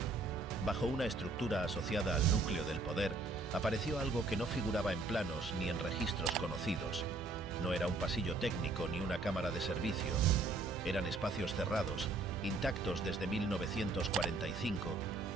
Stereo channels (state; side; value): quieter; left; 3.3 dB